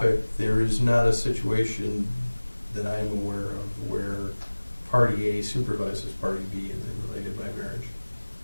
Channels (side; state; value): both; inverted; correlation -1.00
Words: there is not a situation that I'm aware of where party A supervises party B and they're related by marriage.